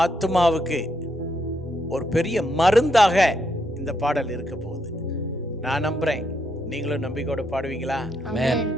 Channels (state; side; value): normal; both; correlation 0.78